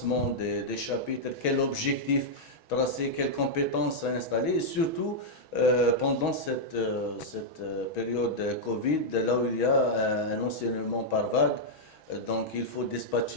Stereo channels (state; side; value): late; right; 6.2 ms